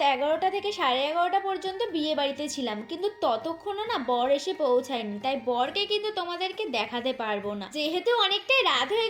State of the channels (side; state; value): both; identical; correlation 1.00